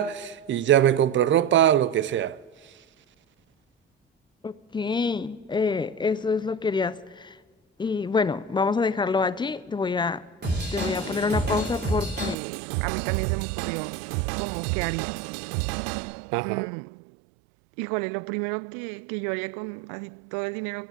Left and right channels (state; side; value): drops out; left; at 12.4 s